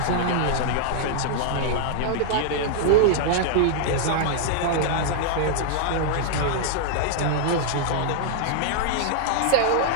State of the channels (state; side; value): different; both; correlation -0.01